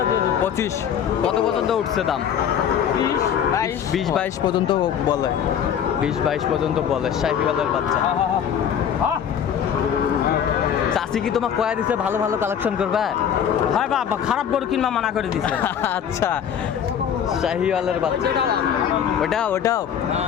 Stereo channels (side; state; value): right; quieter; 8.6 dB